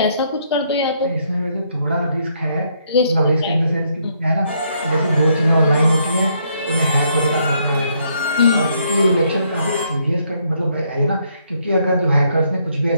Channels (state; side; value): inverted; both; correlation -0.72